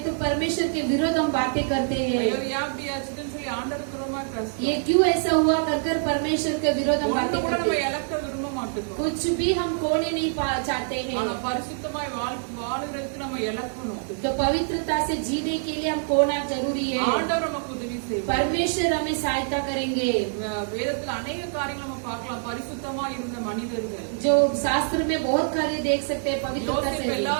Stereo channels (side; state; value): left; silent; digital silence